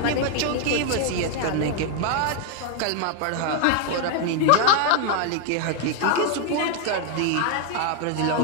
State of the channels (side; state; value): both; different; correlation 0.00